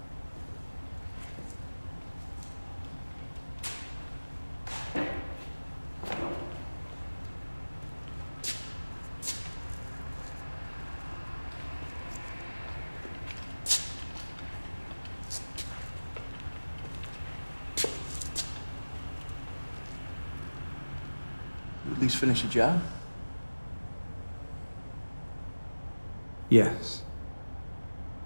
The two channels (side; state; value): both; inverted; correlation -1.00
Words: At least finish the job? Yes.